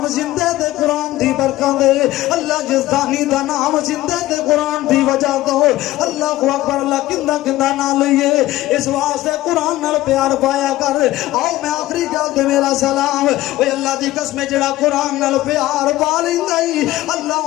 زندہ تے قرآن دی برکت دے اللہ جزدانی دا نام زندہ تے قرآن دی وجہ تو اللہ اکبر اللہ کندہ نہ لئیے اس واسطے قرآن نال پیار پایا کر آؤ میں آخری گل تے میرا سلام اے اللہ دی قسم جڑا قرآن نال پیار پا لیندا ہی اللہ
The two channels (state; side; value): quieter; right; 16.4 dB